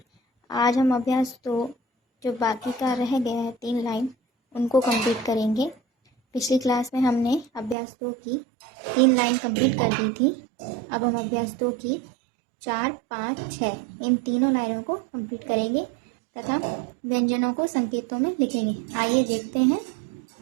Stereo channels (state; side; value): drops out; left; at 7.8 s